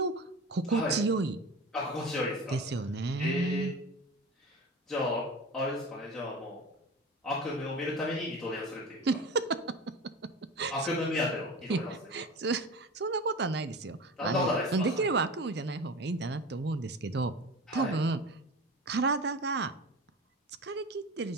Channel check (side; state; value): both; normal; correlation 0.32